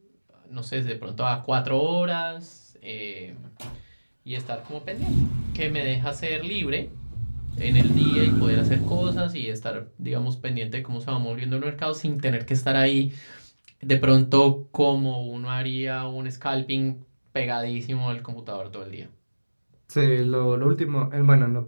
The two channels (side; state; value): both; inverted; correlation -1.00